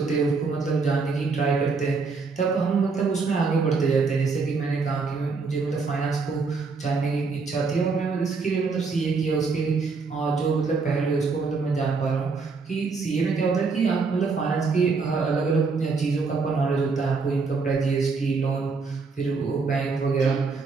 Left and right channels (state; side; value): quieter; left; 4.5 dB